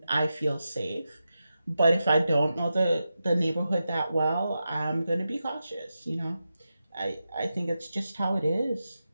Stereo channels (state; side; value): inverted; both; correlation -0.90